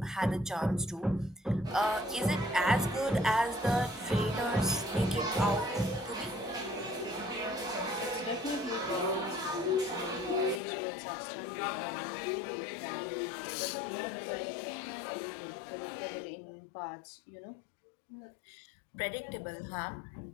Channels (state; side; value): drops out; right; at 10.6 s